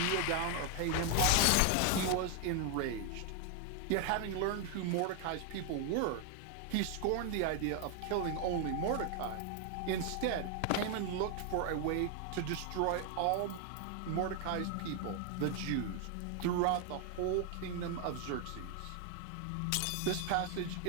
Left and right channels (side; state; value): both; different; correlation 0.00